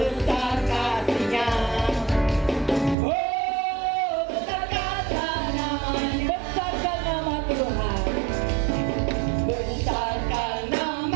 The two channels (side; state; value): left; drops out; at 3.0 s